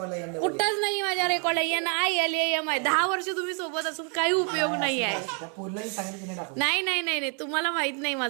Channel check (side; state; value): left; quieter; 39.7 dB